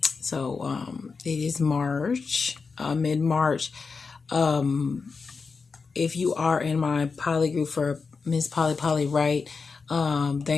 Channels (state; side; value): quieter; right; 4.8 dB